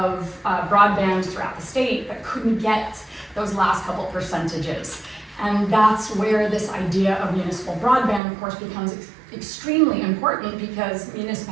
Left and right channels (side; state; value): left; drops out; at 8.2 s